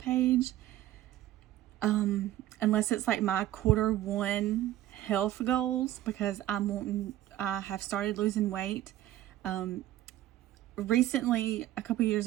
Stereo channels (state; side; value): quieter; left; 13.9 dB